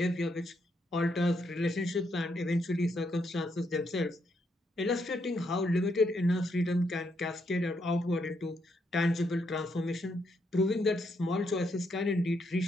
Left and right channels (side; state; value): both; normal; correlation 0.77